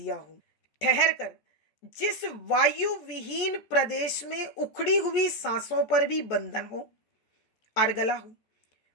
हो। ठहर कर जिस वायु विहीन प्रदेश में उखड़ी हुई सांसों पर भी बंधन हो, अर्गला हो,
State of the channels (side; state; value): right; late; 14 ms